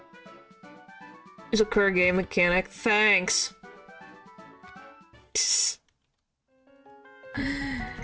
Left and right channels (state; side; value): identical; both; correlation 1.00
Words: It's a core game mechanic. Thanks.